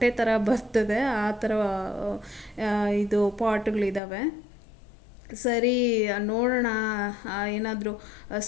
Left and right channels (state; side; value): drops out; right; at 4.0 s